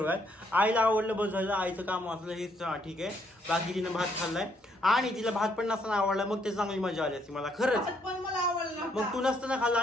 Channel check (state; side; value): normal; both; correlation 0.71